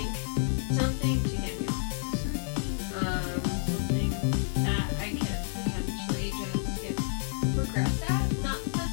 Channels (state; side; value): silent; right; digital silence